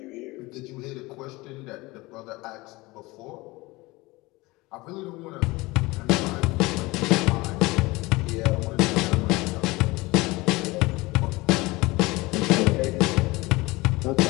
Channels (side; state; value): right; quieter; 22.1 dB